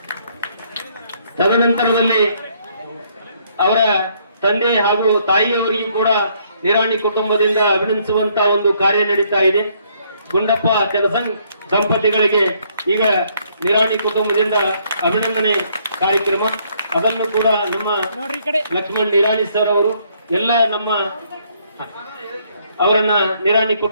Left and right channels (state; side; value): inverted; both; correlation -0.68